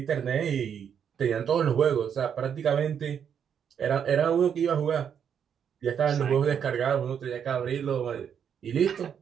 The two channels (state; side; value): quieter; left; 8.0 dB